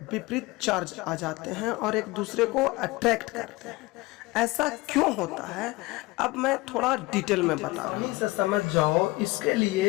विपरीत चार्ज आ जाते हैं और एक दूसरे को अट्रैक्ट करते हैं। ऐसा क्यों होता है, अब मैं थोड़ा डिटेल में बता रहा हूं, से समझ जाओ। इसके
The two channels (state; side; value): quieter; right; 21.7 dB